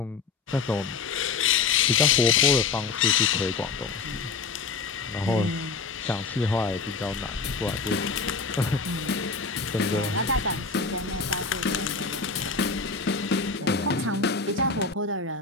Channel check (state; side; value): quieter; right; 4.8 dB